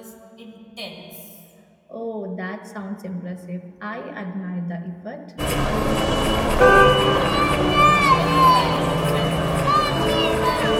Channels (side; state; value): both; identical; correlation 1.00